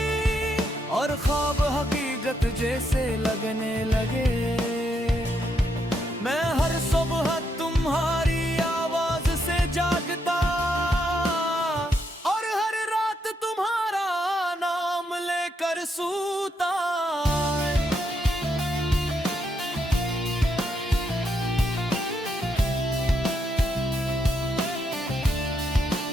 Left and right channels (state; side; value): normal; both; correlation 0.78